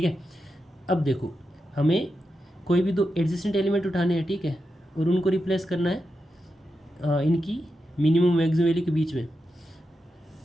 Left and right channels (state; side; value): normal; both; correlation 0.88